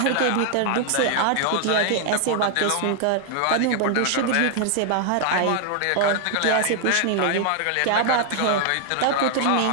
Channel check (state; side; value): different; both; correlation 0.00